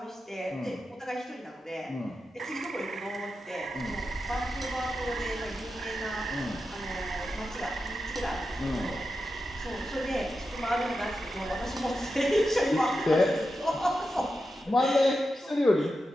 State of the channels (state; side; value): normal; both; correlation 0.89